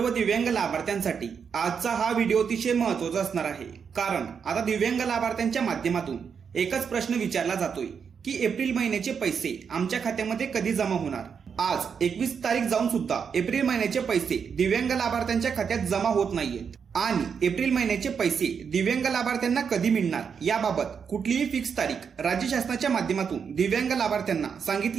दिव्यांग लाभार्थ्यांसाठी आजचा हा व्हिडिओ अतिशय महत्त्वाचा असणार आहे। कारण आता दिव्यांग लाभार्थ्यांच्या माध्यमातून एकच प्रश्न विचारला जातोय की एप्रिल महिन्याचे पैसे आमच्या खात्यामध्ये कधी जमा होणार। आज 21 तारीख जाऊन सुद्धा एप्रिल महिन्याचे पैसे दिव्यांग लाभार्थ्यांच्या खात्यात जमा होत नाहीयेत आणि एप्रिल महिन्याचे पैसे दिव्यांग लाभार्थ्यांना कधी मिळणार याबाबत कुठलीही फिक्स तारीख राज्य शासनाच्या माध्यमातून दिव्यांग लाभार्थ्यांना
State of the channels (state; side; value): quieter; left; 6.6 dB